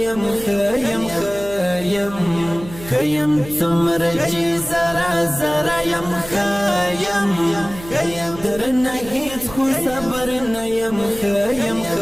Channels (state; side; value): noise; right; hum, 15 dB below the sound